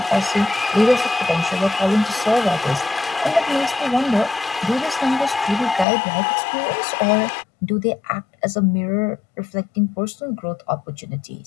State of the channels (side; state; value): right; drops out; at 5.9 s